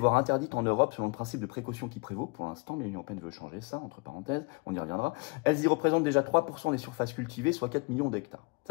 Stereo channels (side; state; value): right; quieter; 29.6 dB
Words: interdites en Europe selon le principe de précaution qui prévaut pour l'instant, mais l'Union européenne veut changer ça, entre parenthèses, on y reviendra. Elles y représentent déjà 3% des surfaces cultivées, soit 4 millions d'hectares.